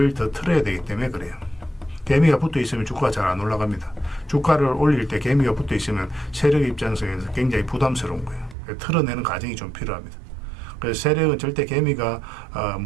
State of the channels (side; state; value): left; drops out; at 8.6 s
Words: 더 틀어야 되기 때문에 그래요. 개미가 붙어 있으면 주가가 잘 안 올라갑니다. 주가를 올릴 때 개미가 붙어 있으면 세력 입장에서 굉장히 부담스러운 거예요. 틀어내는 과정이 좀 필요합니다. 그래서 세력은 절대 개미가